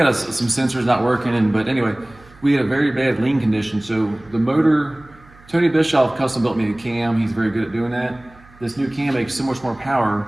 some sensors not working, but anyway, we had a very bad lean condition. So the motor, Tony Bischoff custom built me a cam. He's very good at doing that. This new cam makes so much more power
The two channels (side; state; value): right; noise; hum, 25 dB below the sound